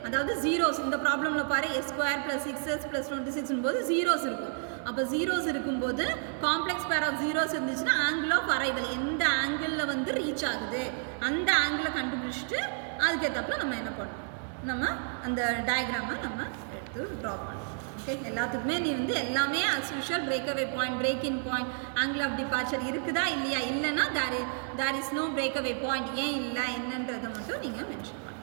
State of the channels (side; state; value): left; silent; 57 dB below the other